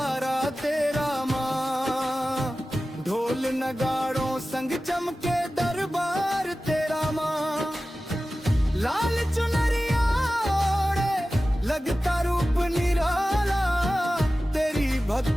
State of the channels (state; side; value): normal; both; correlation 0.95